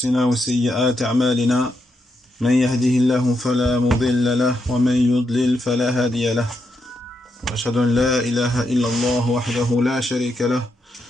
وسيئات أعمالنا. من يهده الله فلا مضل له ومن يضلل فلا هادي له، وأشهد أن لا إله إلا الله وحده لا شريك له،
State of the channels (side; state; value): both; normal; correlation 0.82